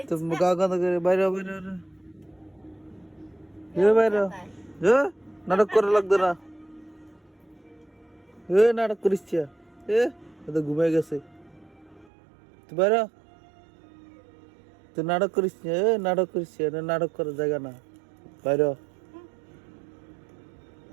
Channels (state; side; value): drops out; left; at 12.1 s